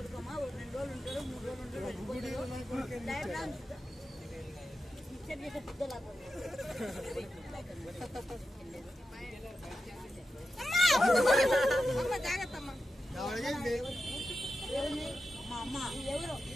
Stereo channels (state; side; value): normal; both; correlation 0.90